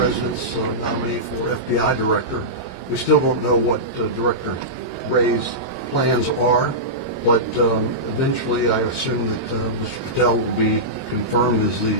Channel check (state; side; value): late; right; 22 ms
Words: nominee for FBI director. We still don't know what Director Wray's plans are, but eventually I assume that Mr. Patel will be confirmed as the